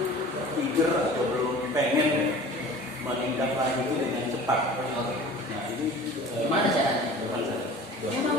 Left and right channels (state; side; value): normal; both; correlation 0.42